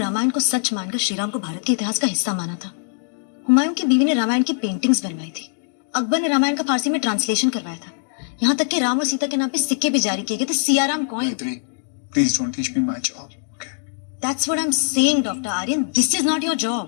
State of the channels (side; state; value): right; silent; digital silence